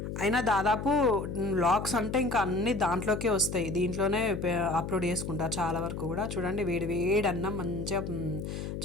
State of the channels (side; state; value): left; noise; hum, 6 dB below the sound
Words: అయినా దాదాపు వ్లాగ్స్ అంటే ఇంకా అన్ని దాంట్లోకే వస్తాయి, దీంట్లోనే అప్లోడ్ చేసుకుంటా చాలా వరకు కూడా. చూడండి, వేడి వేడి అన్నం, మంచిగా